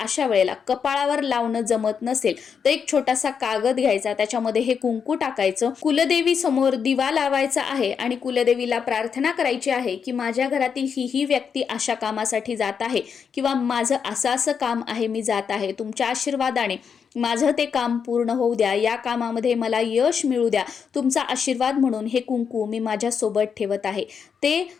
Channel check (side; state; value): right; quieter; 6.7 dB